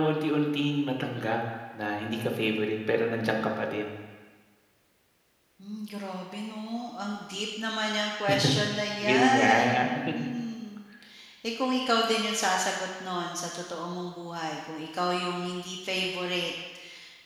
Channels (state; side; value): identical; both; correlation 1.00